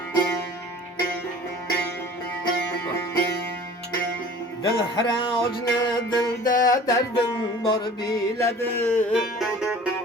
Dil haracını dilde derdin var biledi.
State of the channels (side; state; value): both; normal; correlation 0.45